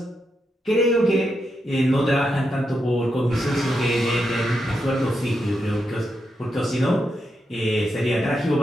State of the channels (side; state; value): both; normal; correlation 0.84